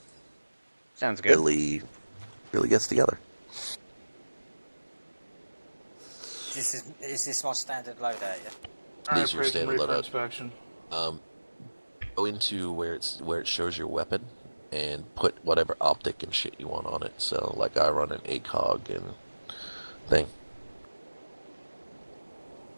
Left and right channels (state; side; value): inverted; both; correlation -1.00